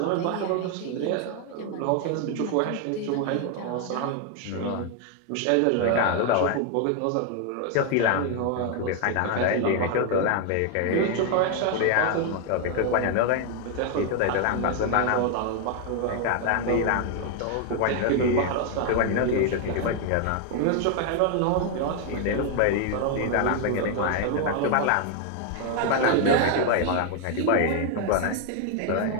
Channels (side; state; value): both; different; correlation 0.00